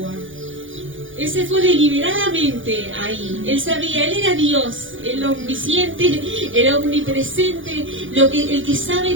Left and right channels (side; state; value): left; late; 0.57 ms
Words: Él se fue deliberadamente ahí. Él sabía, él era Dios, el omnisciente, el omnipresente, el que